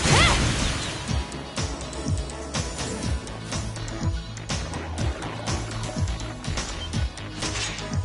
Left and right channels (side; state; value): both; identical; correlation 1.00